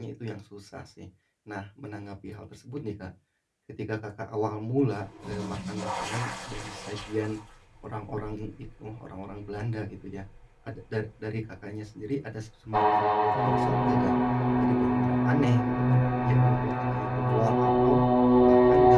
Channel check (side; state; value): both; identical; correlation 1.00